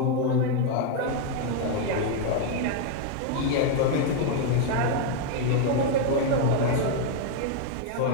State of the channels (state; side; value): different; both; correlation 0.01